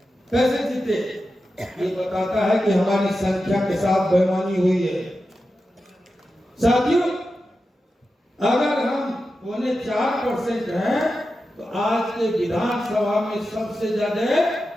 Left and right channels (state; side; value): normal; both; correlation 0.91